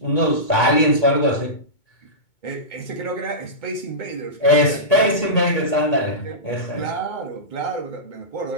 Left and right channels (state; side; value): late; right; 2.2 ms